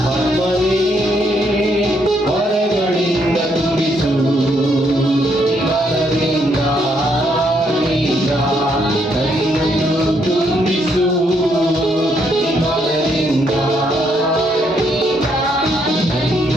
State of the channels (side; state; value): both; normal; correlation 0.73